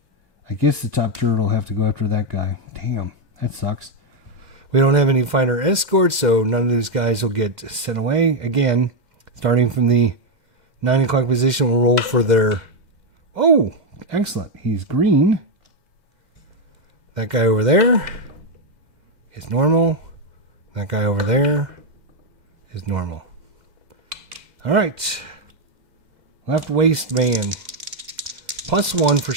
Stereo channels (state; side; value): late; left; 2.1 ms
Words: guess the top turret will have to go after that guy. Damn, that sucks. We don't have any fighter escorts, so none of these guys will get sent away. Again, starting from the 9 o'clock position, we'll roll for their... Oh, excellent. He's green. That guy over there is normal. That guy over there is normal. All right. Left waist man. +1 for